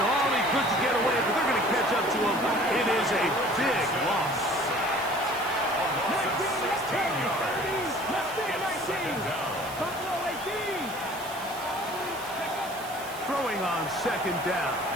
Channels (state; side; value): noise; right; hiss, 15 dB below the sound